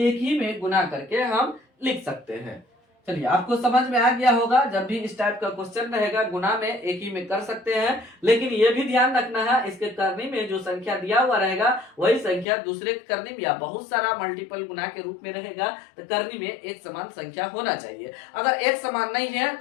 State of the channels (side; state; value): right; drops out; at 12.5 s